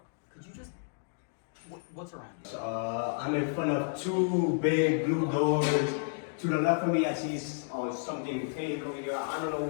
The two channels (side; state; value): right; silent; digital silence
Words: could you just... What's around you? I'm in front of two big blue doors. To the left of me, I see something pink over here. I don't know